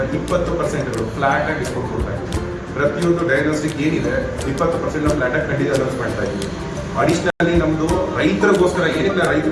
20% ಫ್ಲಾಟ್ ಆಗಿ ಡಿಸ್ಕೌಂಟ್ ಕೊಡ್ತಾ ಇದ್ದೀವಿ. ಪ್ರತಿಯೊಂದು ಡಯಾಗ್ನೋಸ್ಟಿಕ್ ಏನಿದೆ 20% ಫ್ಲಾಟ್ ಆಗಿ ಖಂಡಿತ ಅನೌನ್ಸ್ ಮಾಡ್ತಾ ಇದ್ದೀವಿ. ಅಡಿಷನಲಿ ನಮ್ಮದು ರೈತರಿಗೋಸ್ಕರ ಏನಕ್ಕೆ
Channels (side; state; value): both; identical; correlation 1.00